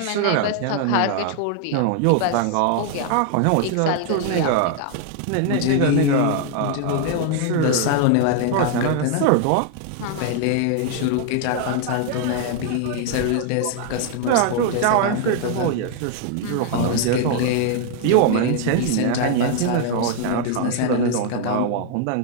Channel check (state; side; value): different; both; correlation 0.00